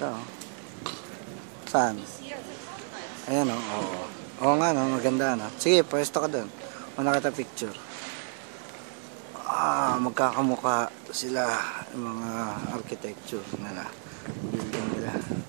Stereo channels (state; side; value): silent; left; 58 dB below the other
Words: o. Saan? Ayan o. Oo. Oo nga no. Maganda no. Sige, pwesto ka dun. Una kita picture. Magkakamukha sila yung mga architecture nila, building nila,